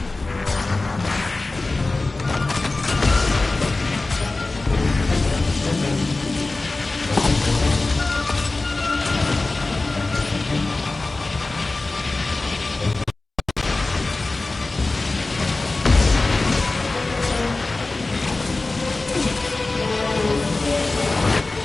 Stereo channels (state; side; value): quieter; right; 3.3 dB